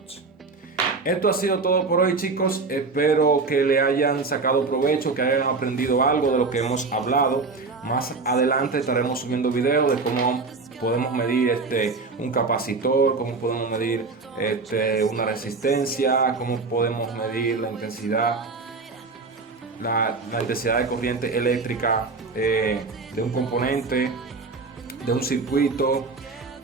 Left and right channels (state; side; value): quieter; left; 4.1 dB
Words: Esto ha sido todo por hoy, chicos. Espero que le hayan sacado provecho, que hayan aprendido algo de lo que hemos hablado. Más adelante estaremos subiendo videos de cómo podemos medir un capacitor, cómo podemos medir una resistencia, cómo podemos medir la intensidad la intensidad de corriente eléctrica de un componente, de un circuito.